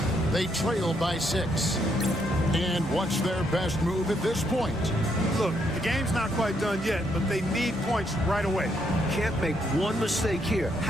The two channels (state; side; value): normal; both; correlation 0.74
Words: They trail by 6. And what's their best move at this point? Look, the game's not quite done yet, but they need points right away. Can't make one mistake here.